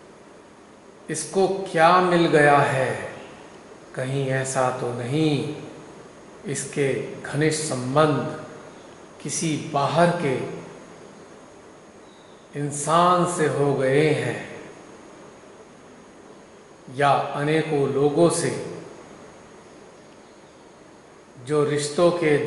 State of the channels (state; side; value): identical; both; correlation 1.00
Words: इसको क्या मिल गया है? कहीं ऐसा तो नहीं इसके घनिष्ठ संबंध किसी बाहर के इंसान से हो गए हैं या अनेकों लोगों से जो रिश्तों के